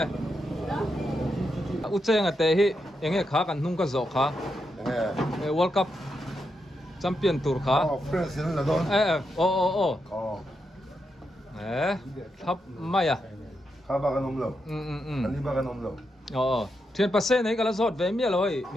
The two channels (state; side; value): normal; both; correlation 0.84